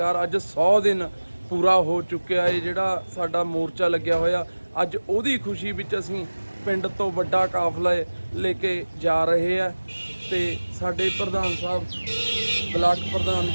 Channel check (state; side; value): inverted; both; correlation -1.00